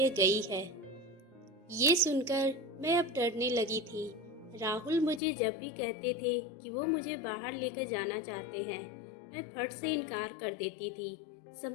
गई है। ये सुनकर मैं अब डरने लगी थी। राहुल मुझे जब भी कहते थे कि वो मुझे बाहर लेकर जाना चाहते हैं, मैं फट से इनकार कर देती थी।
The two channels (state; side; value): drops out; right; at 5.2 s